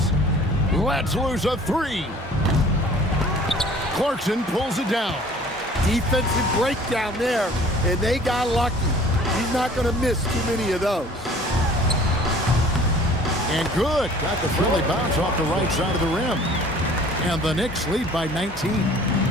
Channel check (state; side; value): normal; both; correlation 0.50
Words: Let's lose a 3. Clarkson pulls it down. Defensive breakdown there, and they got lucky. He's not going to miss too many of those. And good. Got the friendly bounce off the right side of the rim. And the Knicks lead by 19.